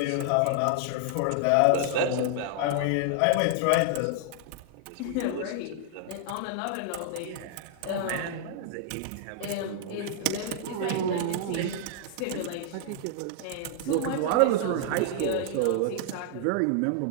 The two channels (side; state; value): both; different; correlation 0.00